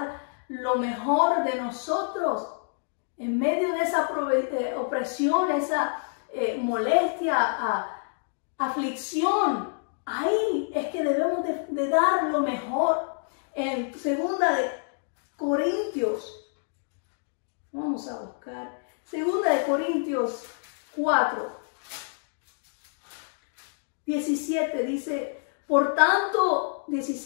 lo mejor de nosotros. En medio de esa opresión, esa molestia, aflicción, ahí es que debemos de dar lo mejor. En 2 de Corintios, vamos a buscar, 2 de Corintios 4, 17 dice, por tanto,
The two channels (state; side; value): silent; right; digital silence